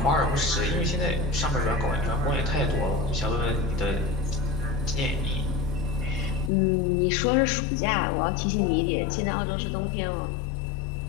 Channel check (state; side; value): drops out; right; at 6.5 s